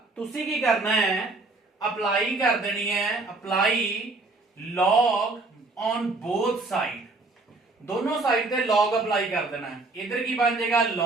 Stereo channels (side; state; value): left; quieter; 3.3 dB